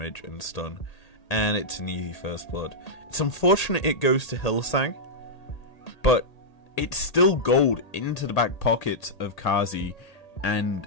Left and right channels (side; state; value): right; late; 1.8 ms